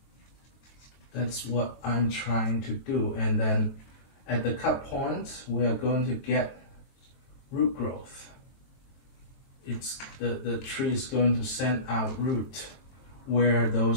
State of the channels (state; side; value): late; right; 22 ms